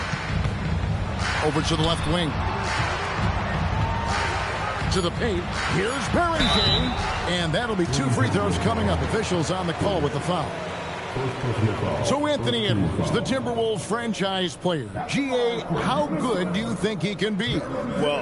Over to the left wing. To the paint. Here's Barrington. And that'll be 2 free throws coming up. Officials on the call with the foul. So Anthony Edwards, the Timberwolves franchise player. GA, how good do you think he can be?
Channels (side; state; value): both; identical; correlation 1.00